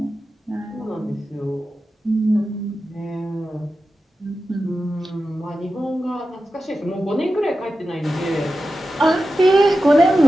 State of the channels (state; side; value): normal; both; correlation 0.92